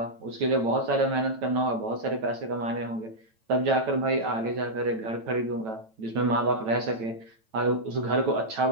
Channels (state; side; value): late; left; 9.0 ms